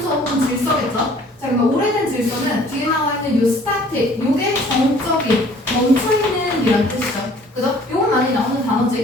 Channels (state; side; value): normal; both; correlation 0.54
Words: 혹은 질서겠죠? 자, 그러면 오래된 질서는 뒤에 나와 있는 요 static, 요게 정적인, 멈춰있는 이란 뜻이죠. 그죠? 요건 많이 나오는